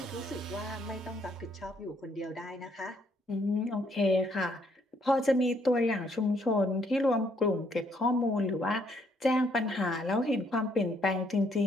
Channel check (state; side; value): normal; both; correlation 0.69